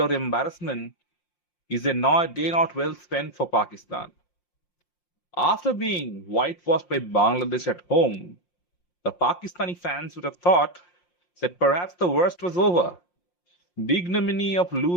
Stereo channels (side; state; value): right; late; 5.6 ms